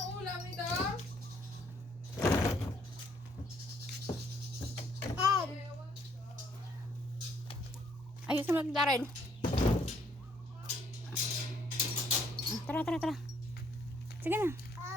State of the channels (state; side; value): normal; both; correlation 0.67